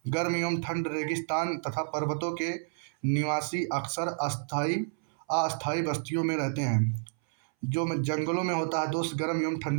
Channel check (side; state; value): left; silent; 58 dB below the other